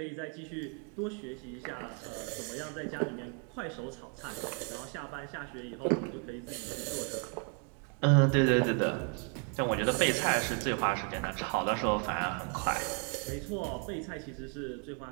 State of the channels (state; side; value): quieter; left; 38.2 dB